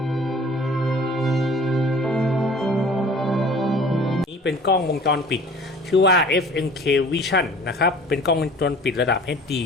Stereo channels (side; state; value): both; normal; correlation 0.47